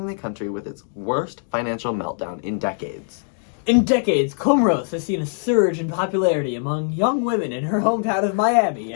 the country with its worst financial meltdown in decades. In decades, Comoros has seen a surge in popularity among young women in her hometown of Miami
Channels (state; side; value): silent; right; digital silence